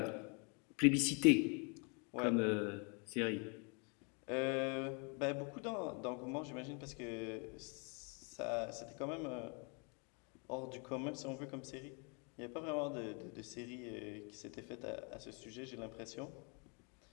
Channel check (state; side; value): quieter; right; 35.4 dB